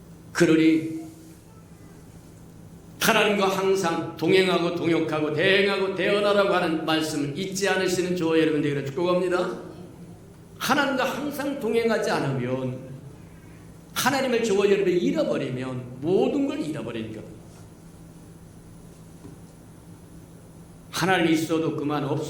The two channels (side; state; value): both; identical; correlation 1.00